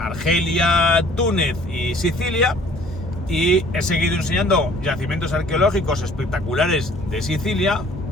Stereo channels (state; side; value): normal; both; correlation 0.54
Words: Túnez y Sicilia, y he seguido enseñando yacimientos arqueológicos espectaculares de Sicilia,